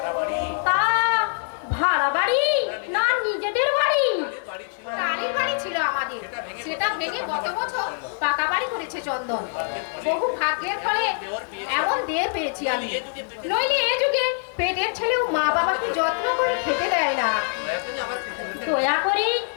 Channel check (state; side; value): silent; right; 61 dB below the other